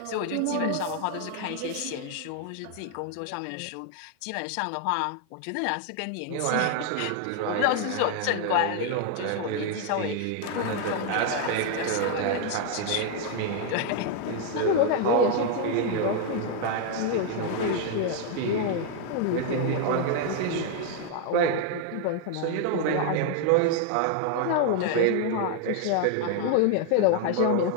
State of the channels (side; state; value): both; different; correlation 0.00